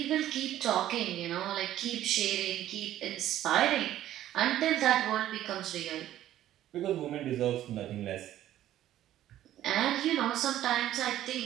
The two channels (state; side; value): quieter; left; 12.8 dB